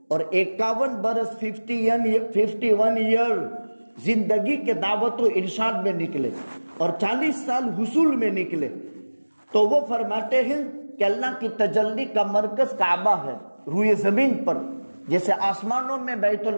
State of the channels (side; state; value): both; inverted; correlation -1.00